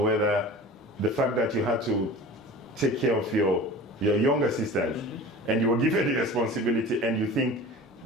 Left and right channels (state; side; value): normal; both; correlation 0.38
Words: the fact that you had to take care of your younger sisters, and you were given the responsibility, and you think